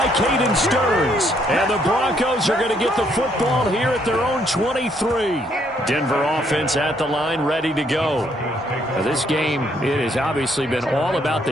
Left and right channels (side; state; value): both; normal; correlation 0.70